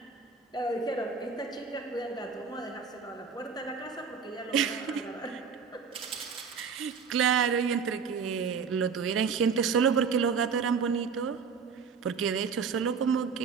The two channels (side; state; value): left; quieter; 6.0 dB